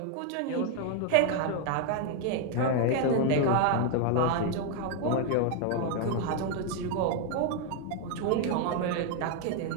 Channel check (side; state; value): both; different; correlation 0.00